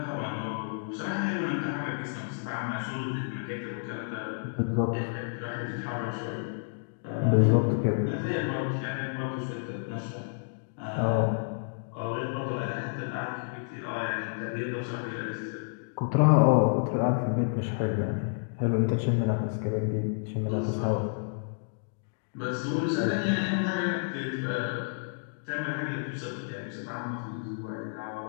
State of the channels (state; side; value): silent; right; digital silence